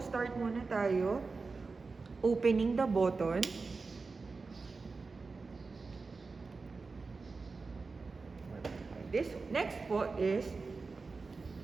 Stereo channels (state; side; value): quieter; left; 4.2 dB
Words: start muna tayo. Opening the button. This next po is